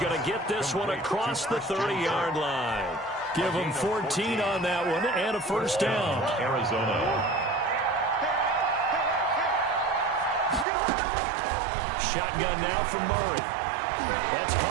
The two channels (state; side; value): drops out; left; at 10.7 s